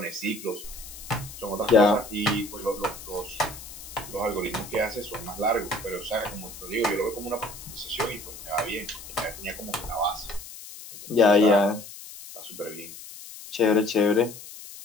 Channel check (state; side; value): noise; left; hiss, 14 dB below the sound